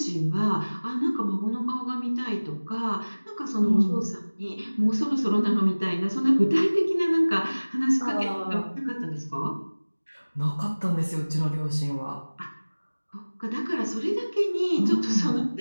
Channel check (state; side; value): inverted; both; correlation -1.00